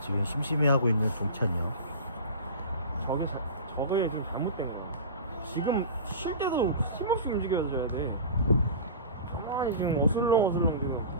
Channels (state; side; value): inverted; both; correlation -0.33